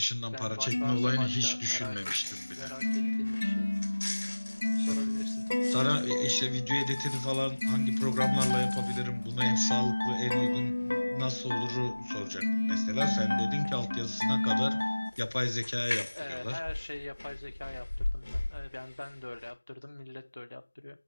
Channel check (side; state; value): both; inverted; correlation -1.00